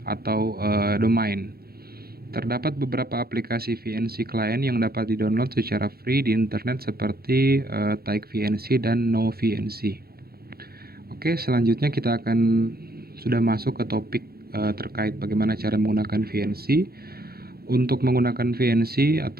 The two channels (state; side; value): late; left; 0.45 ms